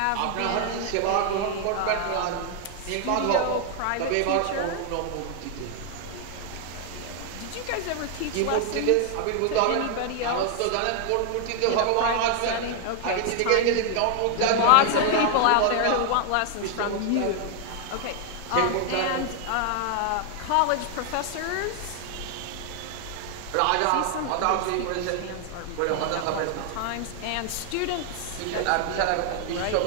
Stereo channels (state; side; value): different; both; correlation 0.00